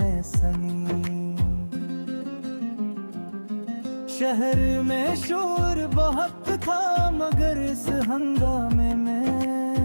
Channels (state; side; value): inverted; both; correlation -1.00